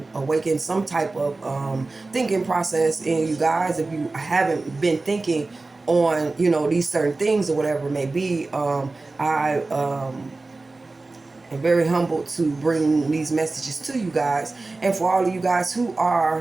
awakened some type of thinking process in you guys. If you haven't been thinking on these certain things or whatever it may be, I and very humbled to bring these messages to you guys. And for all of you guys who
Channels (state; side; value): quieter; left; 3.4 dB